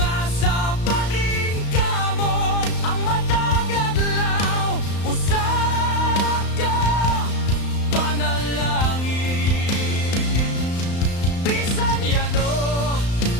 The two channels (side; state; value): right; late; 35 ms